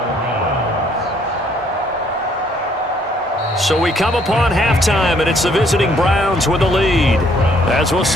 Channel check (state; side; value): normal; both; correlation 0.65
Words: So we come upon halftime, and it's the visiting Browns with the lead. As we'll